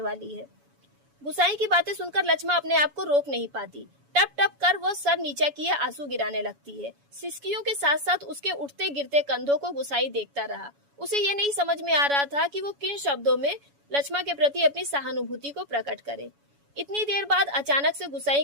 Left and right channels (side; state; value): left; late; 7.1 ms